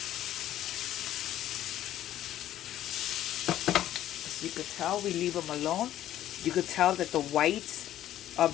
As you could tell, we leave them alone. You could tell that the whites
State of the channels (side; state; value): right; quieter; 12.7 dB